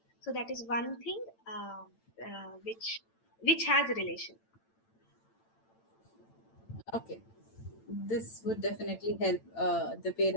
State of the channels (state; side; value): late; right; 8.9 ms